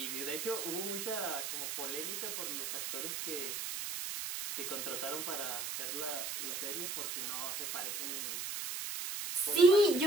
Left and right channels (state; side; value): noise; right; hiss, 4 dB below the sound